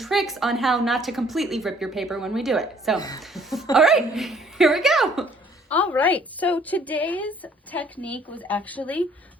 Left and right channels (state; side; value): normal; both; correlation 0.60